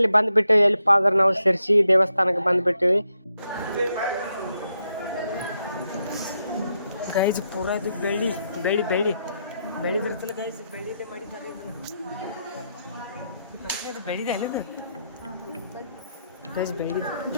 ಬಂದ್ಬಿಟ್ಟಿವಿ. ಎಲ್ಲಿಪ್ಪ ಅಂದ್ರೆ ನಾವು ಶಿರ್ಸಿ ದೇವಸ್ಥಾನಕ್ಕೆ ಬಂದ್ಬಿಟ್ಟಿವಿ ಗೈಸ್. ಪೂರಾ ಇದು ಬೆಳಿದಿರ್ತಿಲ್ಲ ಗೈಸ್. ಬೆಳಿದೆ ಮಾಡಿದ್ದಾರೆ ಇದು ಬೆಳಿದೆ ಅಲ್ಲಿದು ಗೈಸ್. ಬೆಳಿದೆ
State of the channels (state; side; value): inverted; both; correlation -0.81